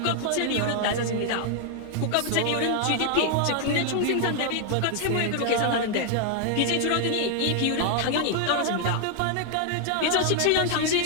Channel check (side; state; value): both; different; correlation 0.00